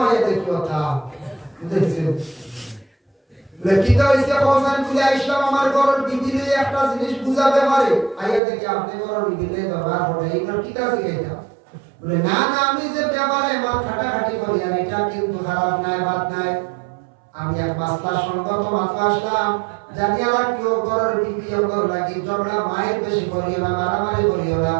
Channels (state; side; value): drops out; left; at 8.4 s